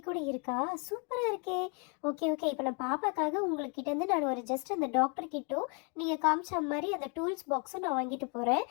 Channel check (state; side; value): quieter; right; 36.0 dB